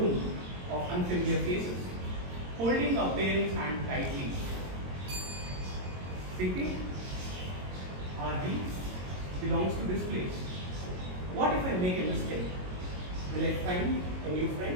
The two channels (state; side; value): late; left; 22 ms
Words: of unfamiliar faces, holding our parents' hand tightly. Thinking, our dreams belongs to this place. What if I make a mistake? Will I find a new